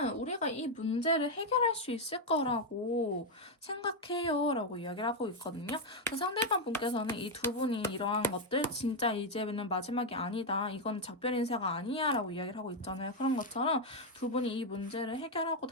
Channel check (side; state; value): both; normal; correlation 0.03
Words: 우리가 이 문제를 해결할 수 있을 거라고 생각해요 라고 이야기를 하고 있거든요. 상대방 분께서는 이 두 분이 이러한 것들 진짜 이제는 마지막이 아니다. 이건 작별 인사가 아니야 라고 이야기를 하고 있잖아요. 그런 것처럼 두 분이 이 문제를 해결하고